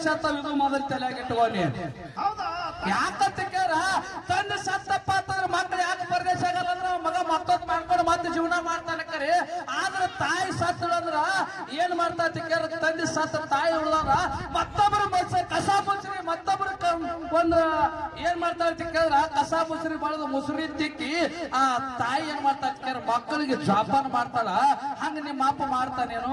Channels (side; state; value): both; identical; correlation 1.00